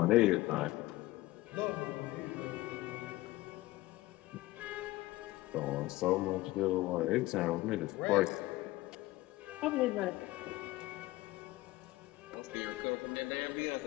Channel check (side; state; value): right; quieter; 18.5 dB